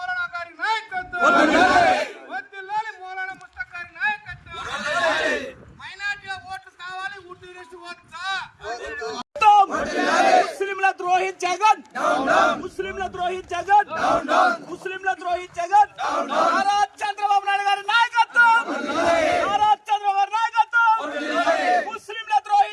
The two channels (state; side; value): identical; both; correlation 1.00